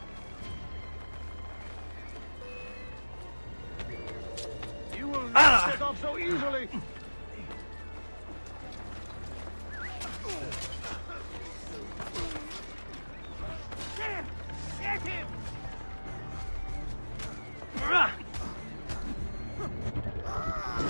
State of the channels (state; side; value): inverted; both; correlation -1.00